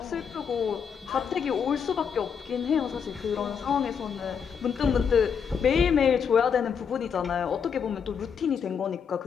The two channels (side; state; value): right; quieter; 6.9 dB